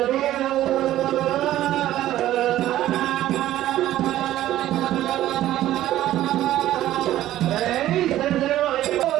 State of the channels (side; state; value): left; quieter; 13.8 dB